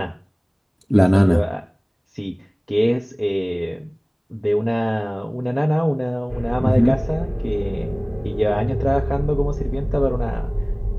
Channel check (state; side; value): identical; both; correlation 1.00